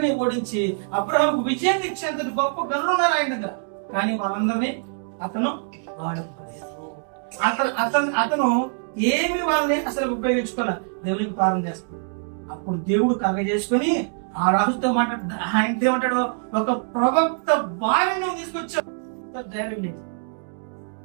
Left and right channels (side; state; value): left; silent; 63 dB below the other